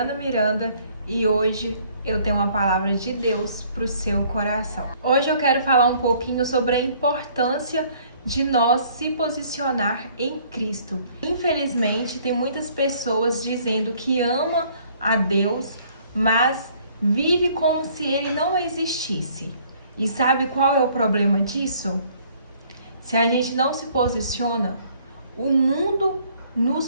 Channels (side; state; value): both; inverted; correlation -0.60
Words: Miranda e hoje eu tenho uma palavra de Deus para o seu coração. Hoje eu quero falar um pouquinho sobre a importância de nós se posicionar em Cristo. Infelizmente, tem muitas pessoas dizendo que ama a Deus, mas vive como se ele não existisse. E sabe qual é o problema disso? Se a gente não se posiciona, o mundo